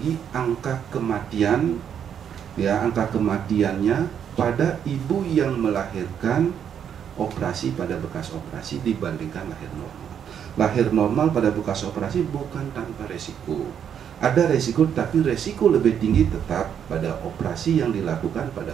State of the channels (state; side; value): quieter; left; 8.5 dB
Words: angka kematian, ya, angka kematiannya pada ibu yang melahirkan operasi pada bekas operasi dibandingkan lahir normal. Lahir normal pada bekas operasi bukan tanpa resiko. Ada resiko, tapi resiko lebih tinggi tetap pada operasi yang dilakukan